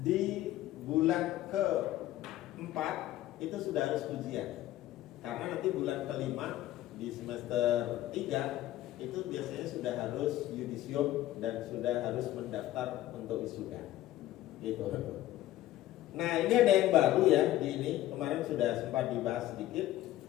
Di bulan ke-4 itu sudah harus ujian. Karena nanti bulan ke-5 di semester 3 itu biasanya sudah harus yudisium dan sudah harus mendaftar untuk wisuda. Gitu. Nah ini ada yang baru ya di ini, kemarin sudah sempat dibahas sedikit.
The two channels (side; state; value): right; quieter; 14.5 dB